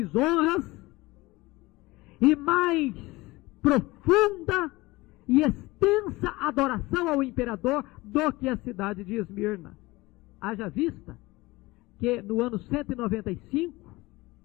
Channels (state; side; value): quieter; right; 20.9 dB